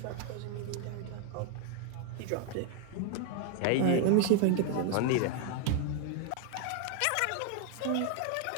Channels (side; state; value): both; different; correlation 0.00